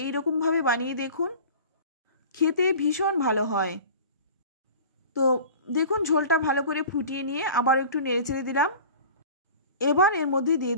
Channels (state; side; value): inverted; both; correlation -0.40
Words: এই রকমভাবে বানিয়ে দেখুন, খেতে ভীষণ ভালো হয়। তো দেখুন ঝোলটা ভালো করে ফুটিয়ে নিয়ে আবার একটু নেড়েচেড়ে দিলাম। এবার এর মধ্যে দিয়ে